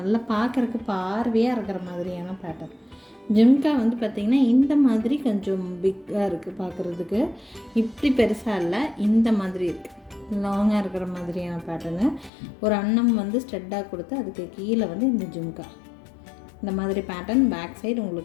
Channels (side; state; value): right; drops out; at 12.3 s